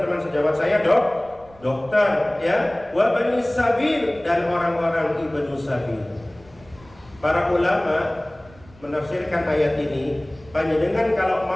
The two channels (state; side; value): noise; right; rumble, 25 dB below the sound